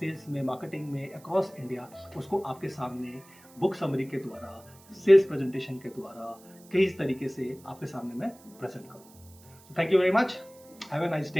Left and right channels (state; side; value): noise; right; hiss, 25 dB below the sound